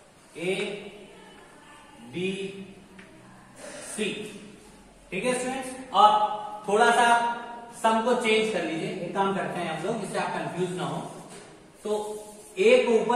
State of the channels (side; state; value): both; identical; correlation 1.00